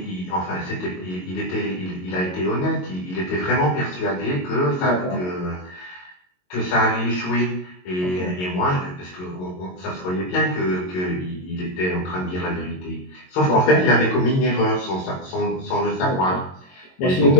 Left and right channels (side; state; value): right; late; 22 ms